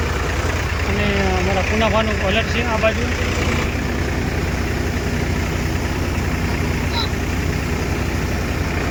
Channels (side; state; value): both; identical; correlation 1.00